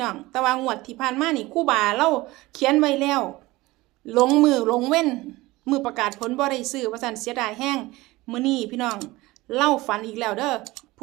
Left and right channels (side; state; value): left; quieter; 20.0 dB